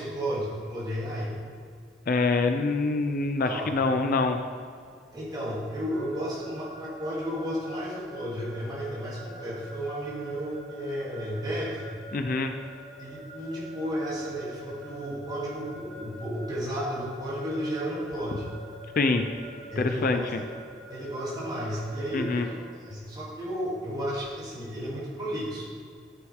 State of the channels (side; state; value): both; normal; correlation 0.58